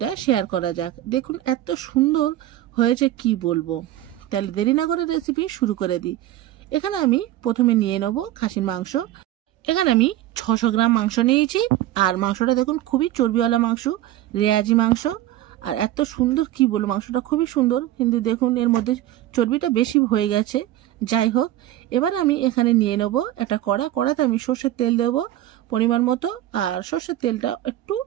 শেয়ার করা যাক। দেখুন এত সুন্দর হয়েছে কি বলবো। তাহলে দেরি না করে রেসিপি শুরু করে দিই। এখানে আমি প্রথমে নিয়ে নেব খাসির মাংস। এখানে আমি 600 গ্রাম মাংস নিয়েছি। আর মাংসটা দেখুন খুবই চর্বিওয়ালা মাংস, রেয়াজি মাংস। আর এত সুন্দর কি বলবো, মাংসটা খুবই সুন্দর, কিন্তু দেখুন এর মধ্যে চর্বিটা বেশি হয়ে গেছে। যাই হোক, এবার আমি এখানে নিয়ে নেব একটা কড়াতে আমি সর্ষের তেল দেবো পরিমাণ মতো। আর সর্ষের তেলটা একটু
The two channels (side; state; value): left; quieter; 13.9 dB